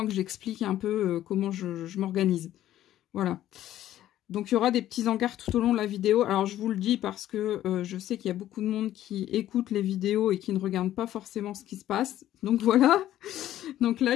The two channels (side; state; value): right; quieter; 12.9 dB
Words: que j'explique un peu comment je m'organise. Voilà. Donc, il y aura des petits encarts tout au long de la vidéo. Alors, je vous le dis parce que je sais qu'il y a beaucoup de monde qui écoute les vidéos et qui ne regarde pas forcément ce qui se passe. Donc, voilà. Donc